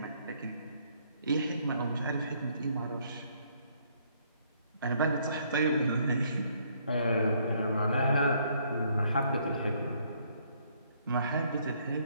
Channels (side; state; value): both; inverted; correlation -0.67